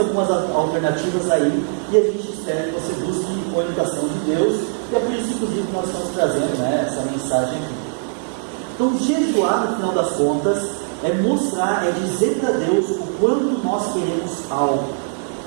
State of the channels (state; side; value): silent; left; 65 dB below the other